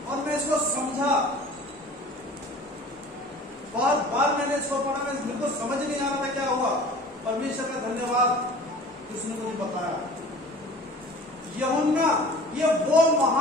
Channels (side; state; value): both; normal; correlation 0.43